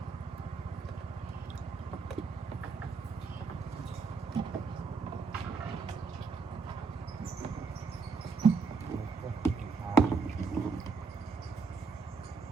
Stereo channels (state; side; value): quieter; left; 4.7 dB